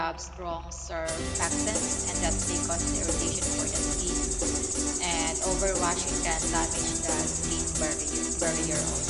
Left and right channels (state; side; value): identical; both; correlation 1.00